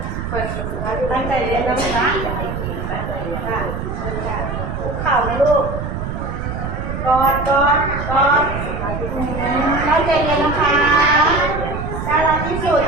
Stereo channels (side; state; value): right; noise; rumble, 5 dB below the sound